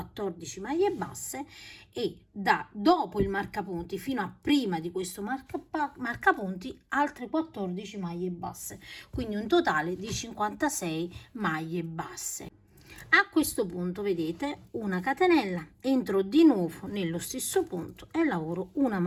maglie basse, e da dopo il marcapunti fino a prima di questo marcapunti altre 14 maglie basse, quindi un totale di 56 maglie basse. A questo punto, vedete, una catenella, entro di nuovo nello stesso punto e lavoro una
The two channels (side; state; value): both; identical; correlation 1.00